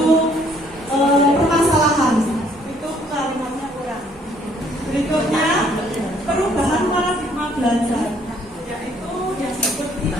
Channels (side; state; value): both; normal; correlation 0.63